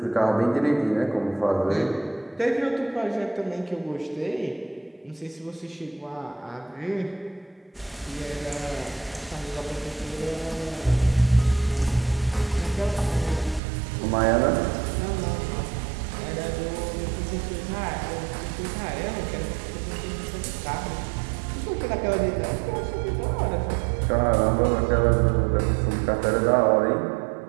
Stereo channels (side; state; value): left; drops out; at 13.6 s